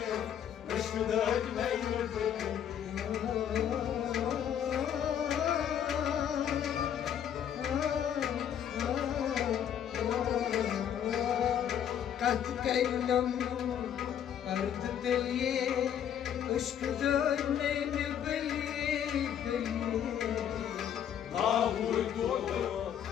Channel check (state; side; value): quieter; right; 9.4 dB